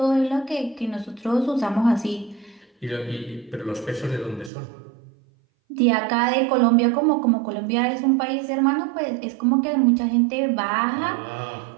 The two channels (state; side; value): drops out; left; at 4.5 s